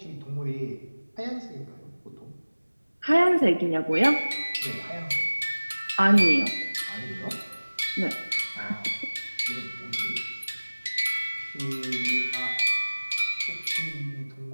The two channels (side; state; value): both; inverted; correlation -1.00